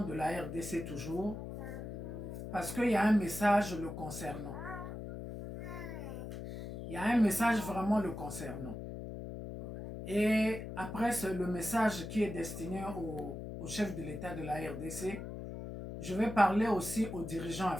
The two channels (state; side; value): noise; left; hum, 8 dB below the sound